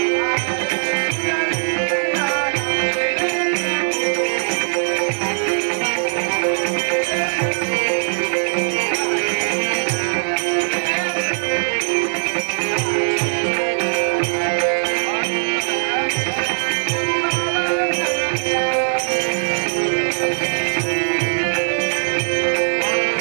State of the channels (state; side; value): silent; left; digital silence